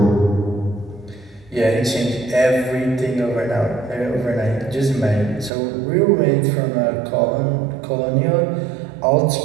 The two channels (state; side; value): drops out; left; at 5.5 s